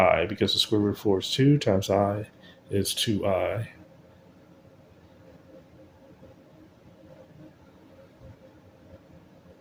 because the square root of 4 is 2 times I is 2i.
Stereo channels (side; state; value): both; identical; correlation 1.00